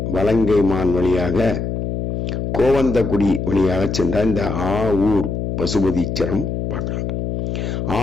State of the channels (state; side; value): noise; left; hum, 3 dB below the sound